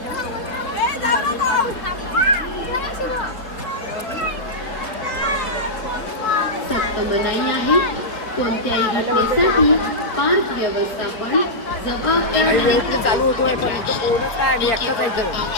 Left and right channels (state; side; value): late; right; 4.0 ms